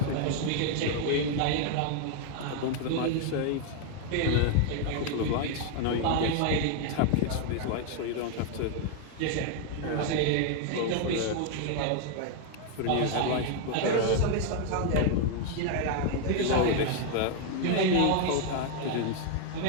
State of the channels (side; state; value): both; different; correlation 0.00